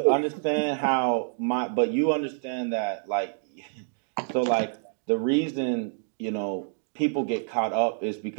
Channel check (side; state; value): left; silent; 60 dB below the other